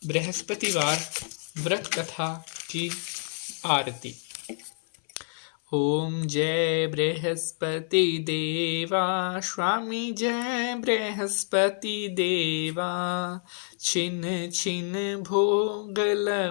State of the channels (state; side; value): silent; right; 59 dB below the other